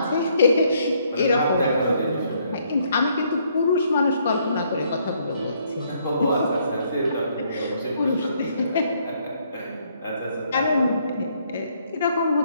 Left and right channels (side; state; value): both; inverted; correlation -0.69